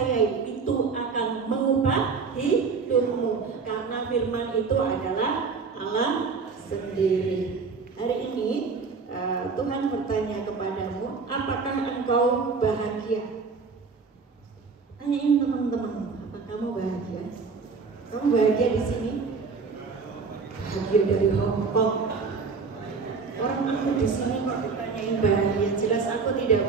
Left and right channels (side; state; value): left; quieter; 4.9 dB